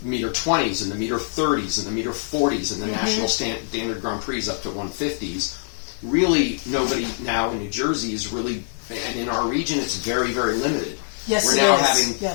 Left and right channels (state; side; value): silent; right; digital silence